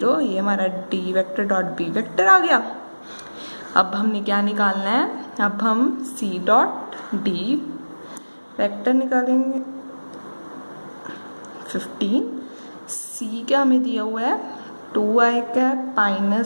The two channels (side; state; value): both; inverted; correlation -1.00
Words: ये हमारा D vector dot B vector आ गया। अब हमने क्या निकालना है, अब हम सी डॉट डी वेक्टर निकालेंगे। 15 सी का हमें दिया हुआ है 2i कैप